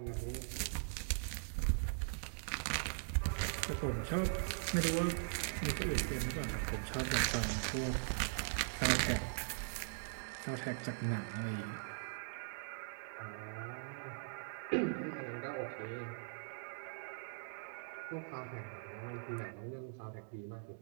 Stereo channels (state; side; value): silent; left; digital silence